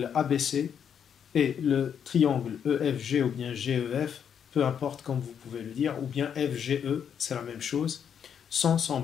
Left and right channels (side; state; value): right; quieter; 8.0 dB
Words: ABC et le triangle EFG ou bien GEF, peu importe comme vous pouvez le dire, ou bien FGE, c'est la même chose, sont